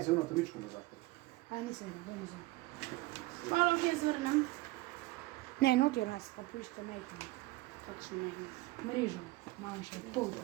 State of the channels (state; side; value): quieter; left; 20.2 dB